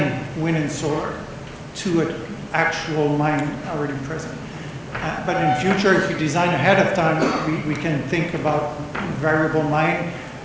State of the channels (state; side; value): identical; both; correlation 1.00